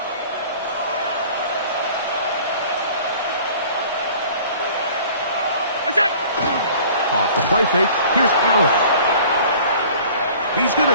Off the play fake, here's Allen. He's going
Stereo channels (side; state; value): both; inverted; correlation -0.47